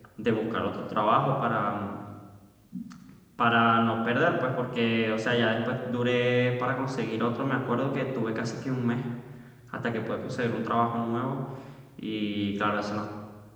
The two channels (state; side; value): identical; both; correlation 1.00